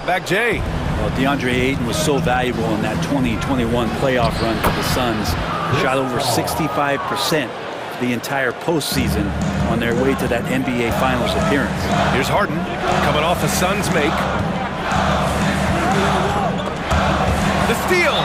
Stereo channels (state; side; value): identical; both; correlation 1.00